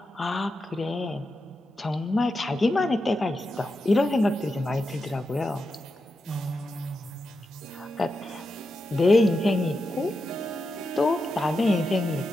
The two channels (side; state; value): both; normal; correlation 0.88